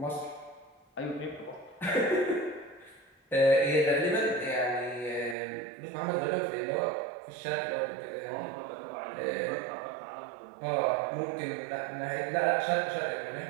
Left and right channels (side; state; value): left; drops out; at 5.4 s